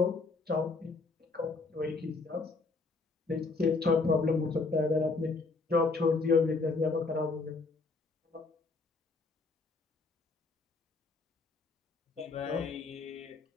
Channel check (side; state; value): right; quieter; 3.9 dB